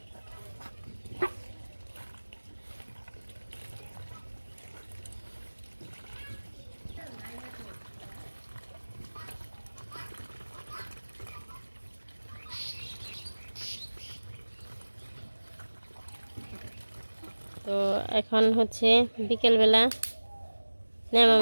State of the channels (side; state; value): both; inverted; correlation -1.00